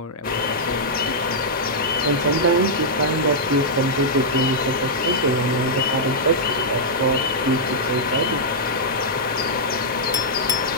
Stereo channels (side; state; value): both; normal; correlation -0.08